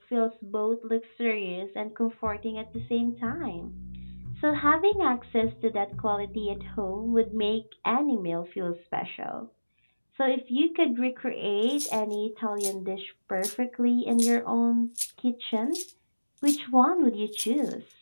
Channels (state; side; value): inverted; both; correlation -1.00